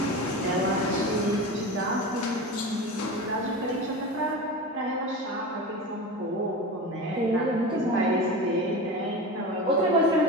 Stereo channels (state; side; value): normal; both; correlation 0.28